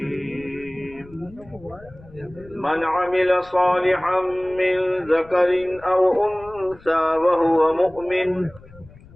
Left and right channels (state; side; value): noise; left; rumble, 22 dB below the sound